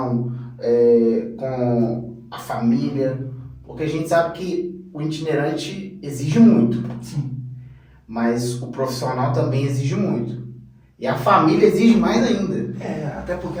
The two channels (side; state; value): both; identical; correlation 1.00